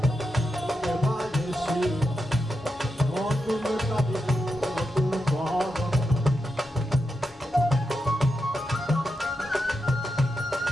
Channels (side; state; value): both; normal; correlation 0.87